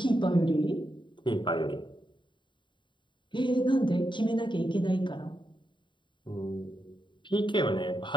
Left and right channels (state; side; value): late; right; 0.23 ms